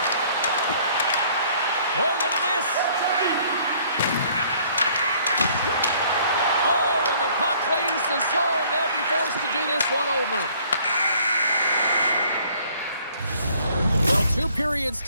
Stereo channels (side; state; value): both; inverted; correlation -0.59